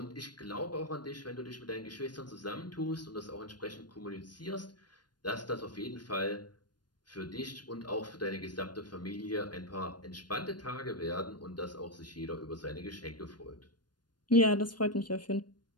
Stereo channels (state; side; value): late; right; 0.70 ms